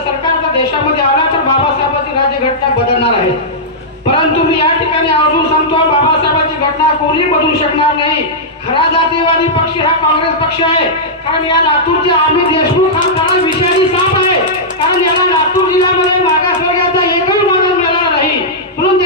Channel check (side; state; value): both; normal; correlation -0.11